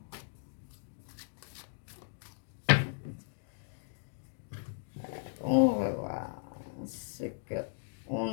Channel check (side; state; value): right; silent; digital silence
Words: On va voir ce que on